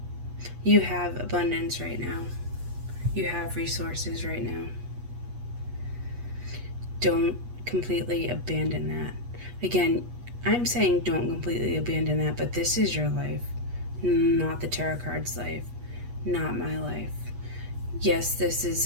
You have abundance right now. You have resources right now. Don't completely abandon that. Again, I'm saying don't completely abandon that, but this is your life, not the tarot card's life, not my life. Yes, this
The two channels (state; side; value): late; left; 8.3 ms